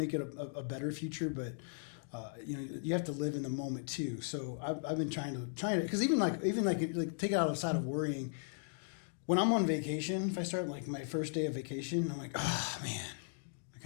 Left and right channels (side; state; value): right; silent; digital silence